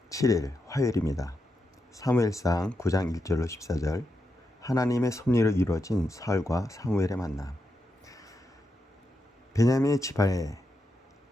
7일 화요일입니다. 사무엘상 9장 1절로 14절. 하나님의 섭리로 이루어진 사울과 사무엘의 만남. 베냐민의 지파에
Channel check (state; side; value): normal; both; correlation 0.85